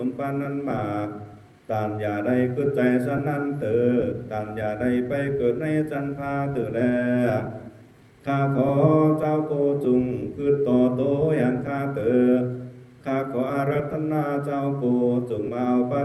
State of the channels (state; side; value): identical; both; correlation 1.00